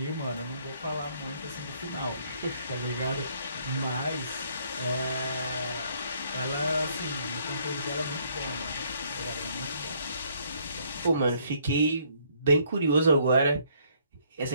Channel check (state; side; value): inverted; both; correlation -0.66